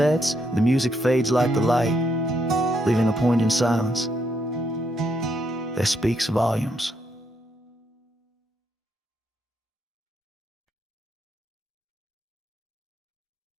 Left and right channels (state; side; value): normal; both; correlation 0.76